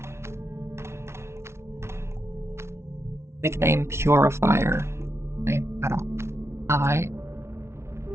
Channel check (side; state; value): left; late; 0.13 ms